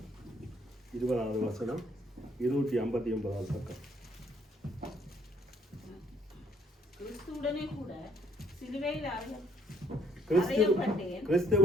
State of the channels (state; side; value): normal; both; correlation 0.67